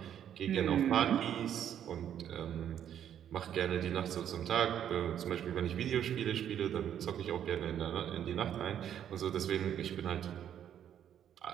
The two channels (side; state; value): left; quieter; 9.8 dB